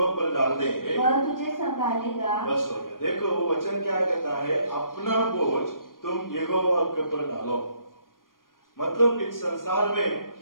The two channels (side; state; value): right; late; 0.90 ms